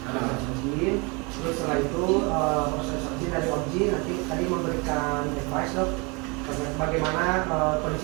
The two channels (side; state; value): left; quieter; 29.4 dB